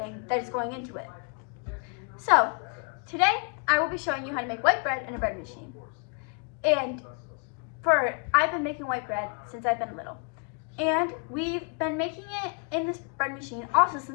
that is going into it. So today, I will be showing you how to make white bread in a bread machine. And I've been making white bread since I've been little. And we've been making it in this bread machine also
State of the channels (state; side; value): quieter; right; 36.9 dB